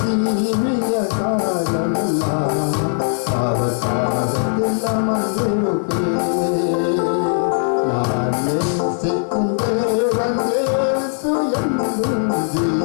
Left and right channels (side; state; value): right; silent; digital silence